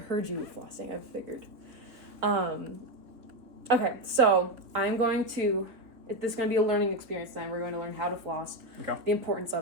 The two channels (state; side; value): late; left; 3.7 ms